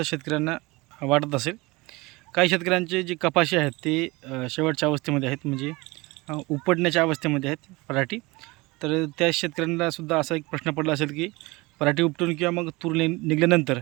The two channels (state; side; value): quieter; left; 23.4 dB